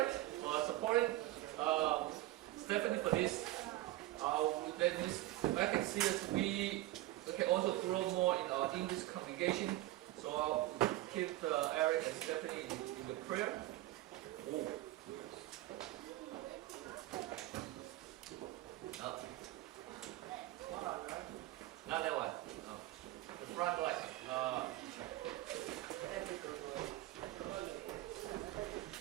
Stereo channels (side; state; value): left; quieter; 16.6 dB